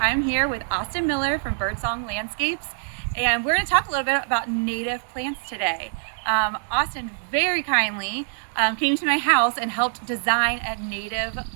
I'm here with Austin Miller from Birdsong Landscapes. And we're going to talk a little bit about native plants today. Austin very kindly came to my house and helped design a native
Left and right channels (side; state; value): left; silent; digital silence